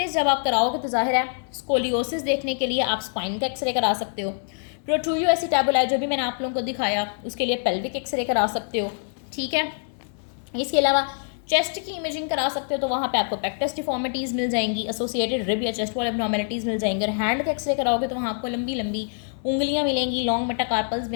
जब आप कराओगे तो जाहिर है स्कोलियोसिस देखने के लिए आप स्पाइन का एक्सरे करा सकते हो, प्रोट्रूयो एसिटैबुलाई जो भी मैंने आप लोगों को दिखाया उसके लिए पेल्विक एक्सरे करा सकते हो, ठीक है। इसके अलावा चेस्ट की इमेजिंग करा सकते हो, तो वहाँ पे आपको पेक्टस डिफॉर्मिटीज़ मिल जाएंगी, एसोसिएटेड रिब या चेस्ट वॉल एब्नॉर्मलिटीज़ मिल जाएंगे। और हैंड का एक्सरे कराओगे तो वहाँ आपको लंबी लंबी उंगलियाँ मिलेंगी, लॉन्ग मेटाकार्पल्स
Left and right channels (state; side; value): silent; right; digital silence